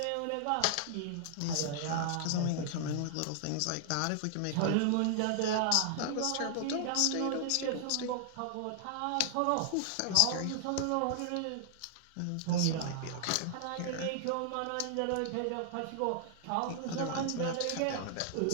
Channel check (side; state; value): both; different; correlation -0.01